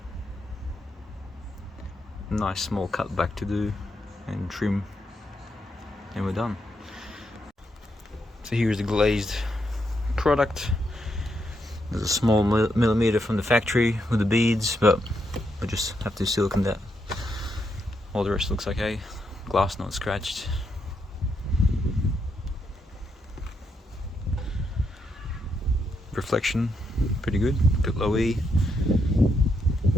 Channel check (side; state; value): both; normal; correlation 0.79